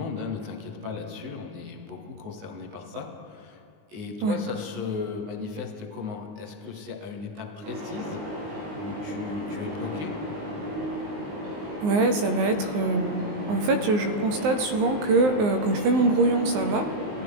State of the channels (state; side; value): late; left; 19 ms